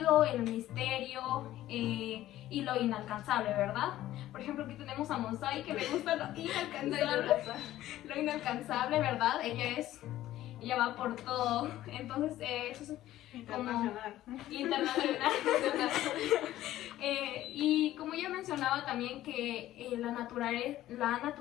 el misterio y lo inalcanzable, ¿verdad? Por ejemplo, aquí tenemos a Monsai, que le gusta lo inalcanzable, ¿verdad? Ella va por todo, entonces eso es internacional. Internacional. Y como ya mencionaba también que la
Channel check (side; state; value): right; quieter; 14.2 dB